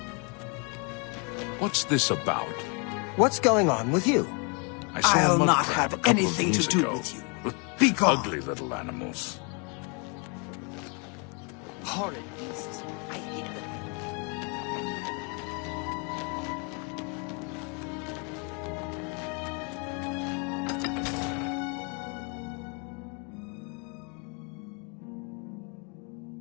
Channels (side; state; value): right; quieter; 34.5 dB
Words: What's this about? What's going on with you? I saw I'll a mud not crab have a couple of anything to days do ago. with you. Be gone. Ugly little animals. Horrid beasts. I hate them.